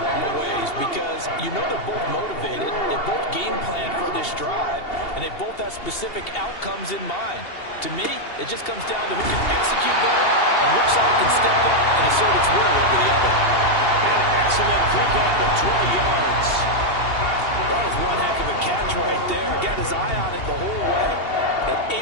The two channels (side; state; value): right; late; 2.8 ms